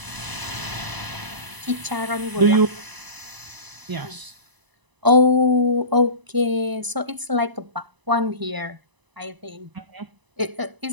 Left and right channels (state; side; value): late; left; 1.0 ms